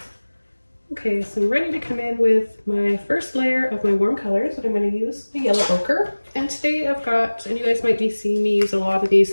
Okay, so I'm ready to come in with my first layer of my warm colors, and I'm going to use the yellow ochre. And today I've got, and you guys might be seeing me use a lot of these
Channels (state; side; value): inverted; both; correlation -1.00